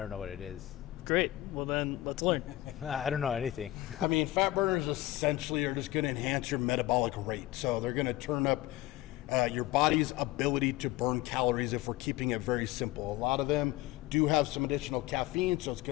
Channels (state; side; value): quieter; right; 16.6 dB